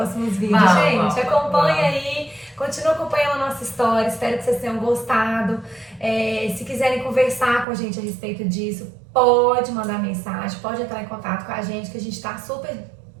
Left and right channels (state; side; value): drops out; left; at 7.7 s